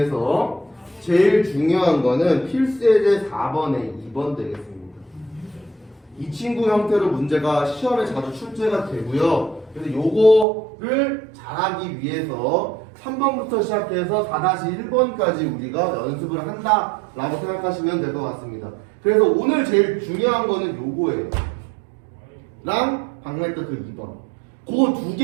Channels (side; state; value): left; drops out; at 10.5 s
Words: 제일 중요한 거는 필수예제 4번에 2번 되겠습니다. 이 친구 형태로 문제가 시험에 자주 출제가 되고요. 그래서 요거를 잘하기 위해서 3번부터 시작해서 4-1번까지 우리가 연습을 한다라고 생각하시면 될 것 같습니다. 그래서 오늘 제일 중요한 거는 요거예요. 랑 방금 했던 그 2번. 그 두